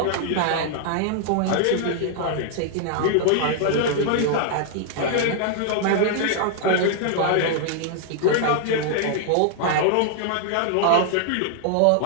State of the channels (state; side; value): different; both; correlation -0.01